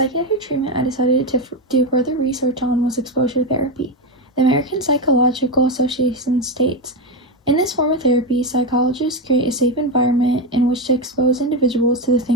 treatment I decided to do further research on was exposure therapy. The American Psychological Association states, "In this form of therapy, psychologists create a safe environment in which to expose individuals to the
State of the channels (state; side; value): normal; both; correlation 0.12